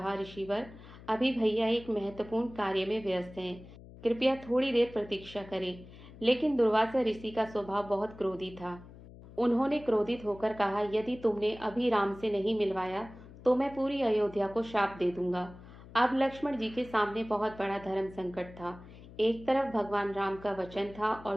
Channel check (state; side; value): noise; left; hum, 18 dB below the sound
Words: ऋषिवर, अभी भैया एक महत्वपूर्ण कार्य में व्यस्त हैं, कृपया थोड़ी देर प्रतीक्षा करें। लेकिन दुर्वासा ऋषि का स्वभाव बहुत क्रोधी था। उन्होंने क्रोधित होकर कहा, यदि तुमने अभी राम से नहीं मिलवाया तो मैं पूरी अयोध्या को शाप दे दूंगा। अब लक्ष्मण जी के सामने बहुत बड़ा धर्म संकट था। एक तरफ भगवान राम का वचन था और